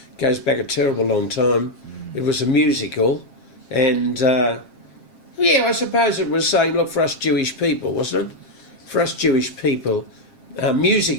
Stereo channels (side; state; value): right; late; 7.5 ms